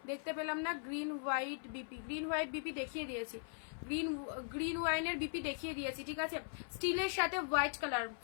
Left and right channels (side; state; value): right; silent; 51 dB below the other